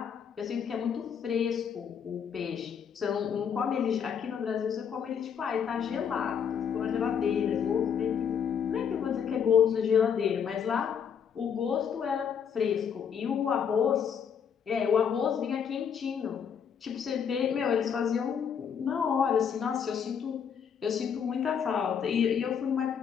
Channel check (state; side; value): quieter; right; 7.5 dB